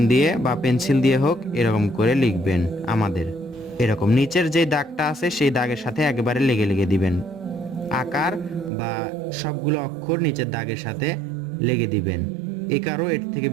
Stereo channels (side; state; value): left; drops out; at 8.7 s